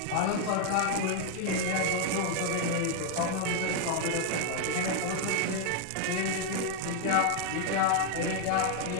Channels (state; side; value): different; both; correlation 0.00